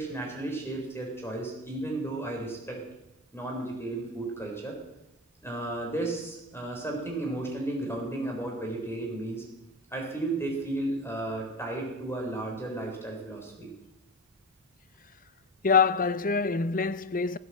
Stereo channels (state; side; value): normal; both; correlation 0.24